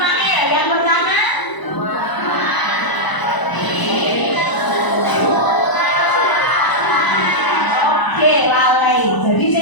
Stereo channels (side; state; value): right; late; 1.0 ms